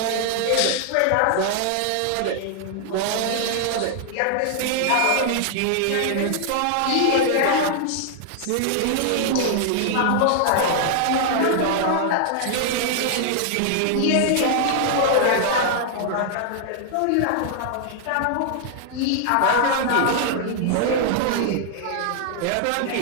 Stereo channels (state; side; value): different; both; correlation 0.00